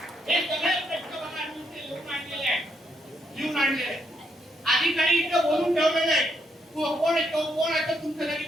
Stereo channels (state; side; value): normal; both; correlation 0.77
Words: हे सगळे प्रश्न बघा मी लिहून आणलेले आहे, लिहून आणलेले आहे. अधिकारी इथे बोलून ठेवलेले आहे. कोण येतो, कोण असं तुमच्यासाठी